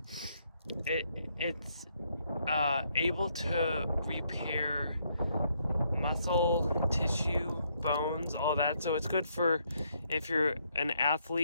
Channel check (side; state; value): both; inverted; correlation -0.73